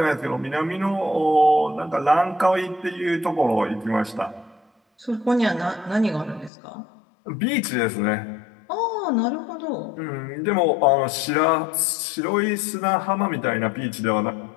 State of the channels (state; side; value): drops out; right; at 6.5 s